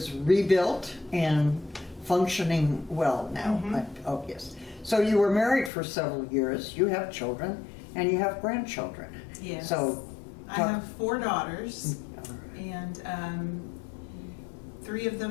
rebuilt and functioning well now. Mhm. Oh, yes. So you were married for several years. You have children and you have grandchildren. Yes. So I have 4 daughters, all right. and 3 of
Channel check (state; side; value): drops out; right; at 5.7 s